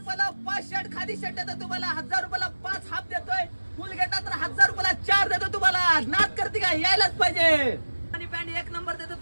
5 शर्ट, खादी शर्ट देतो तुम्हाला. 1000 रुपयाला 5 हाफ देतोय. फुल घेता तर 1000 रुपयाला 4 देतो तुम्हाला. नाद करते का? यायलाच पाहिजे. अरमानी पॅन्ट एक नंबर देतो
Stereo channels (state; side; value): inverted; both; correlation -1.00